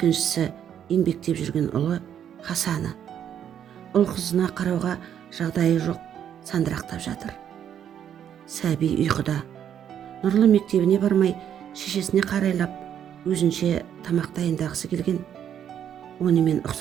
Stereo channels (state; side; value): quieter; left; 9.4 dB